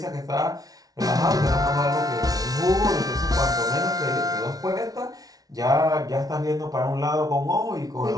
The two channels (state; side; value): late; left; 0.18 ms